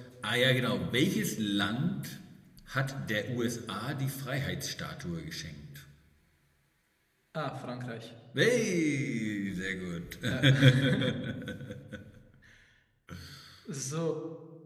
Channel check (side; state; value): both; identical; correlation 1.00